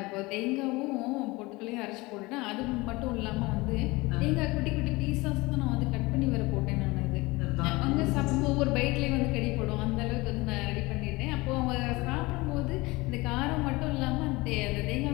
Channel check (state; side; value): quieter; right; 22.5 dB